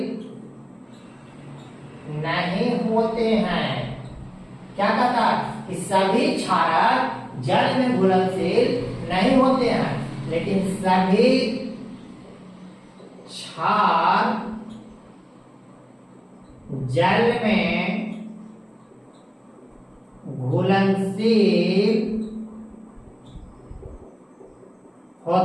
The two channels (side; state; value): both; identical; correlation 1.00